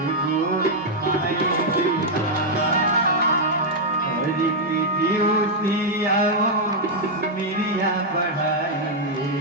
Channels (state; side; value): normal; both; correlation -0.03